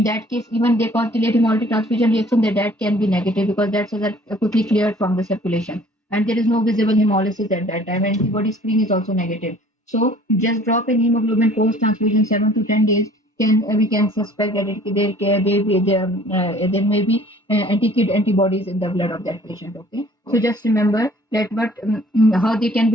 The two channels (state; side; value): normal; both; correlation 0.53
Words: that case, even they cause delayed hemolytic transfusion reaction, that can be negative because that's quickly cleared from the circulation, and there is no visible hemolysis at that time. Antibody screen is also negative. So just drop in hemoglobin post transfusion 7 to 10 days. We can suspect that there may be anti-kid antibodies in the blood of that patient. Okay, so just remember that how they can